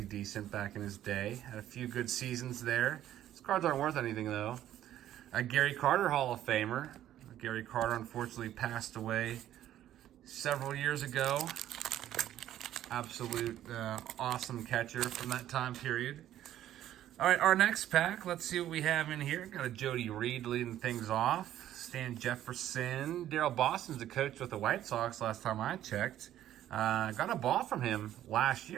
decent back in his day. Had a few good seasons there. His cards aren't worth anything, though. A Gary Carter Hall of Famer. Gary Carter unfortunately passed away several years ago. Absolute awesome catcher from that time period. All right, our next pack. Let's see what we have in here. Got a Jody Reed leading things off. Stan Jefferson. Daryl Boston's the coach with the White Sox last time I checked. Got a ball from him last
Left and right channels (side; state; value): left; quieter; 12.3 dB